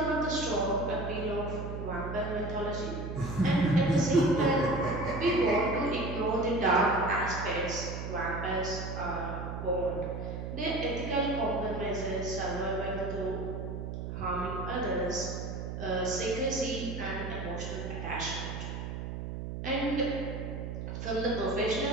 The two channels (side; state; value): right; noise; hum, 6 dB below the sound